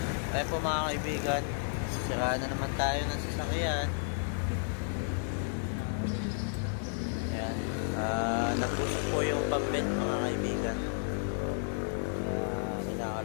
Kaya po mga kaibigan, siraan na naman tayo ng sasakyan. Ayan. Nagpusok po yung pambet mga kaibigan.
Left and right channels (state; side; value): silent; right; digital silence